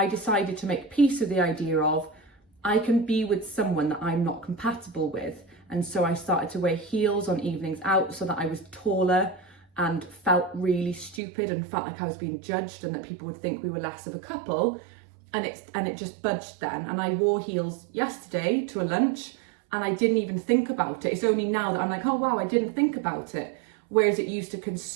decided to make peace with the idea of I can be with someone that I'm not compatible with. And so I started to wear heels on evenings out so that I was taller and felt really stupid and felt like I was being judged and that people would think we were less of a couple. And it just budged then. And I wore heels yesterday to a lunch and I didn't even think about it. It's only now that I'm like, oh wow, I didn't think about it. Whereas it used to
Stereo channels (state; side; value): drops out; left; at 11.2 s